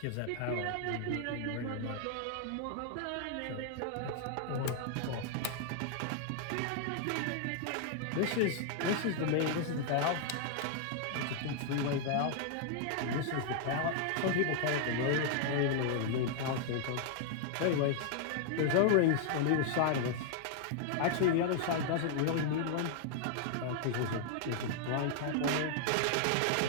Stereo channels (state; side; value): different; both; correlation 0.00